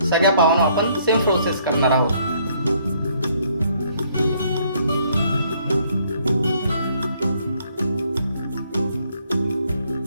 सगळ्या पावांना आपण सेम प्रोसेस करणार आहोत.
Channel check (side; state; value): both; inverted; correlation -0.66